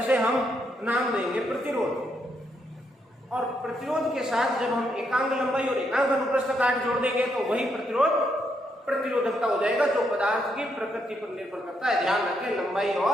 हम नाम देंगे प्रतिरोध। और प्रतिरोध के साथ जब हम एकांक लंबाई और एकांक अनुप्रस्थ काट जोड़ देंगे तो वही प्रतिरोधकता हो जाएगा, जो पदार्थ की प्रकृति पर निर्भर करता है। ध्यान रखें, लंबाई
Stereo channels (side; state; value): both; normal; correlation 0.77